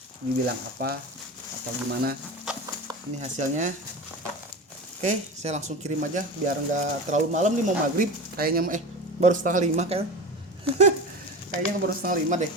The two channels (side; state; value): both; normal; correlation 0.28